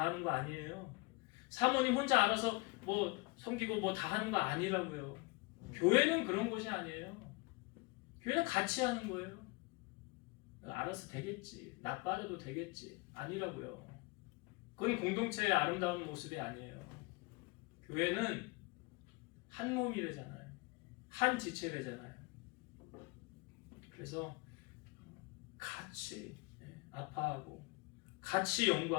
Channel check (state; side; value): quieter; right; 26.1 dB